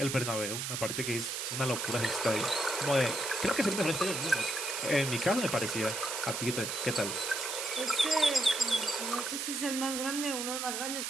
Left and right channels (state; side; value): noise; right; hiss, 3 dB below the sound